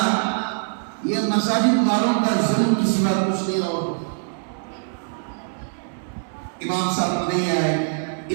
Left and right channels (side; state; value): left; silent; 63 dB below the other